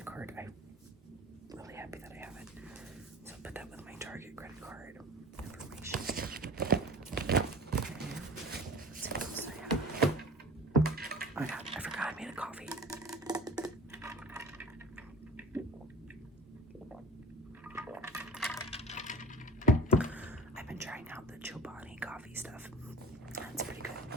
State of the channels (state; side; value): normal; both; correlation 0.40